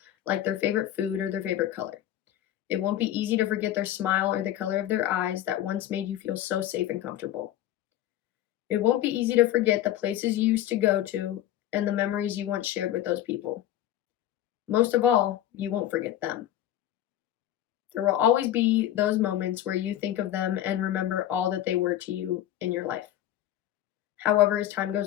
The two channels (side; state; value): right; quieter; 12.5 dB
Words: like their favorite food or their favorite color. It won't be easy to forget their smile or the color of their eyes that once made you feel so safe and comfortable. It won't be easy to forget the places you used to go to and the memories you once shared with those people. Most of all, you won't forget them. There will always be those moments where you think of them and remember all that they were to you in your life. However, as time